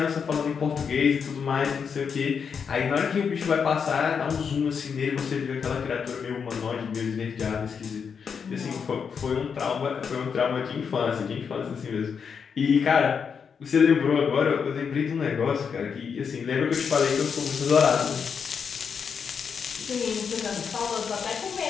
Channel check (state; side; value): quieter; right; 6.4 dB